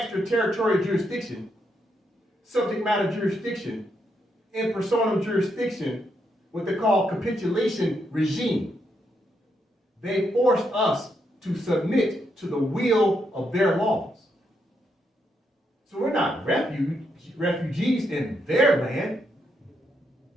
jurisdiction, subject matter jurisdiction, in personam jurisdiction, what they call capitulation regime. They forced us to submit to the will of their laws. So we're not refugees in their land.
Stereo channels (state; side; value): normal; both; correlation 0.79